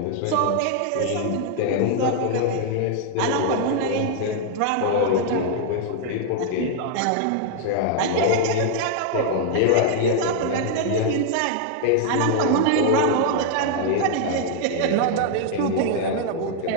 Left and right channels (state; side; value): different; both; correlation 0.00